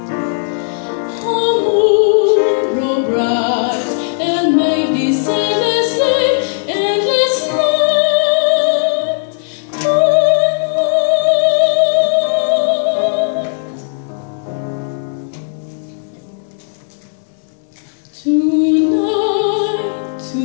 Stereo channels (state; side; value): silent; right; digital silence